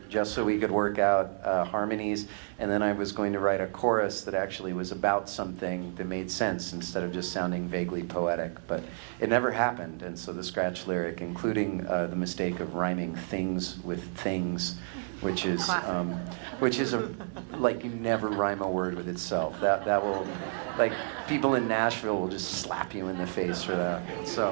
just so we could work out harmonies, and then I was going to write a chorus that actually was about something that made sense instead of just sounding vaguely poetic, but it never happened, and so the scratch lyric, including the mistake of rhyming things with things, which is you never rhyme a word with itself. That will, people in Nashville will just slap you in the face for that.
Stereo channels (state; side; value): silent; left; digital silence